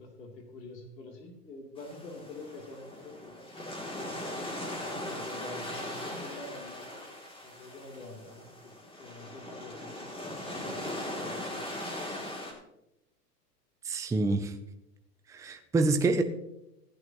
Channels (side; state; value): both; normal; correlation 0.58